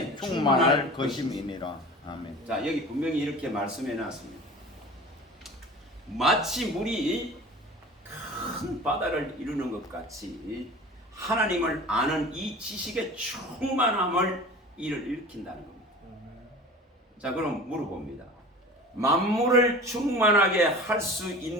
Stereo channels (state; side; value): normal; both; correlation 0.38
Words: 충만할 것임이니라. 아멘. 자, 여기 분명히 이렇게 말씀해 놨습니다. 마치 물이 큰 바다를 이루는 것 같이 하나님을 아는 이 지식의 충만함을 이를 일으킨다는 겁니다. 자, 그럼 물어봅니다. 만물을 충만하게 할 수